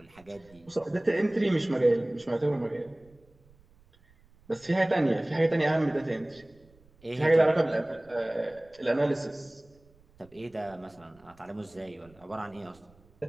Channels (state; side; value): noise; right; rumble, 29 dB below the sound